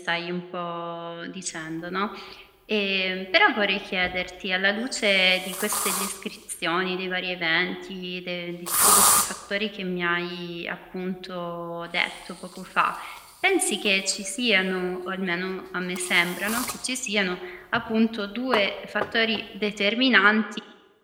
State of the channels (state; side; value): identical; both; correlation 1.00